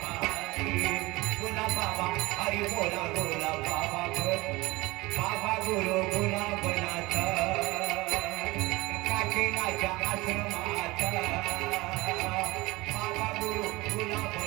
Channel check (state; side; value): quieter; left; 21.6 dB